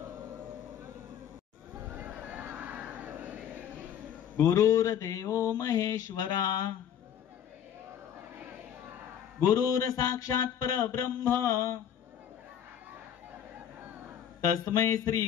गुरुर्देवो महेश्वरा गुरुर साक्षात परब्रह्म तस्मै श्री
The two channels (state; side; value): quieter; right; 9.4 dB